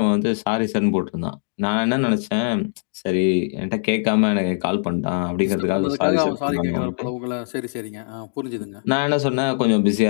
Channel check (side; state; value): right; silent; digital silence